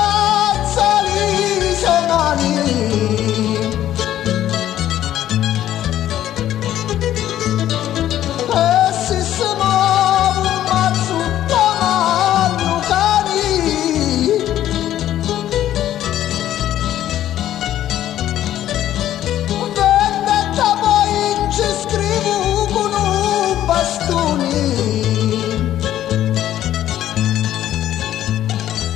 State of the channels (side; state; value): right; quieter; 12.3 dB